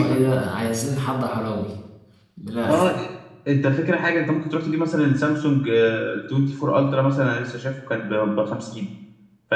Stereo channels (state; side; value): identical; both; correlation 1.00